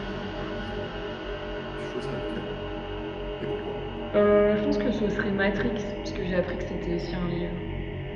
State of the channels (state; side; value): identical; both; correlation 1.00